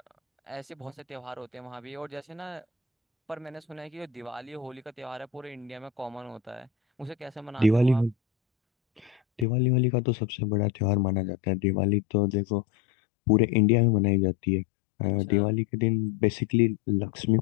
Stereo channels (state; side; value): drops out; right; at 9.5 s